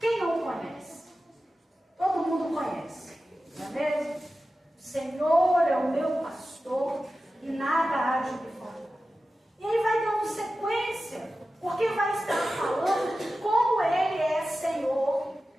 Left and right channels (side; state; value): both; normal; correlation 0.93